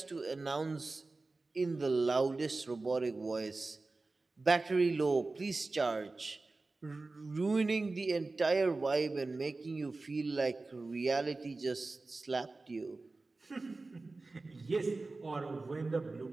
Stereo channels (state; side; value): quieter; left; 3.5 dB